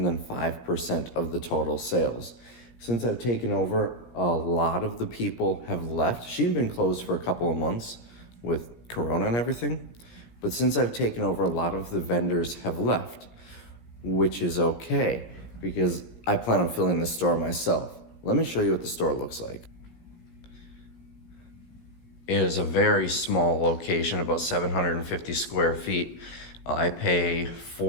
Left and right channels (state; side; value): late; right; 17 ms